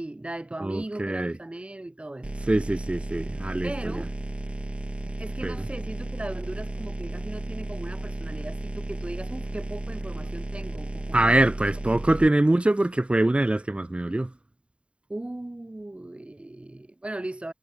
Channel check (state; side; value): late; left; 0.057 ms